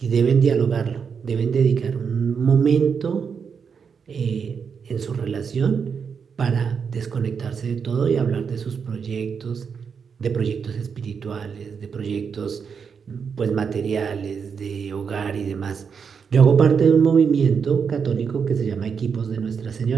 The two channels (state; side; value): quieter; left; 6.3 dB